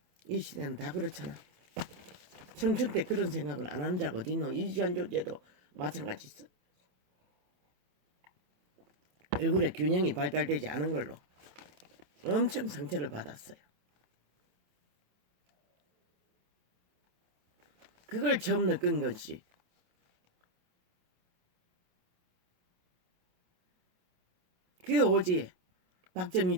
이 시대는 다 그렇잖아. 청춘 때 그런 생각을 안 하는 자가 어딨노. 이주한 존재도 마찬가지 있어. 얼굴에 균형이 발달되지 않은 걸로 엄청 상처를 받았어요. 그걸 처음 느낀 것이 그 오지에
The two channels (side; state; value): left; late; 28 ms